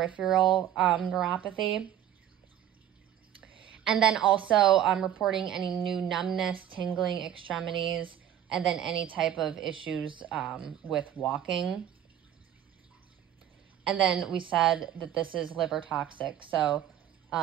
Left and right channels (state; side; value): quieter; left; 10.9 dB